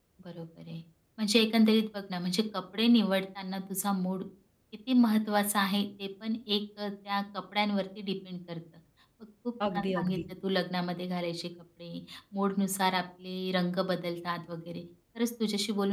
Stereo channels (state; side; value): identical; both; correlation 1.00